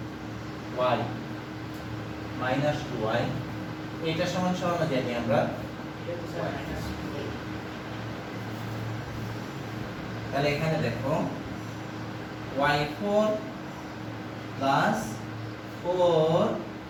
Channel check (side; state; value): both; identical; correlation 1.00